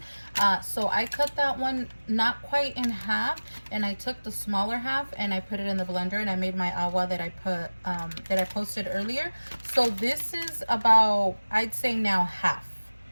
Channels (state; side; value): inverted; both; correlation -1.00